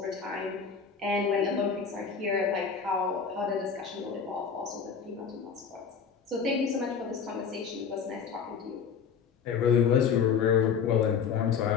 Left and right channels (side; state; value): right; quieter; 6.6 dB